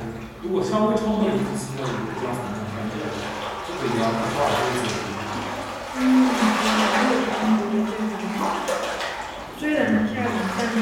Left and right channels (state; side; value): identical; both; correlation 1.00